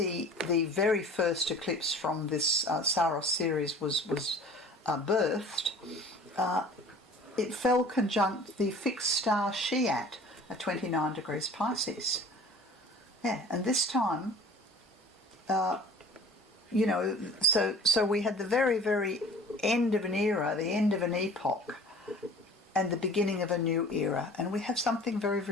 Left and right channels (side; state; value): both; normal; correlation 0.46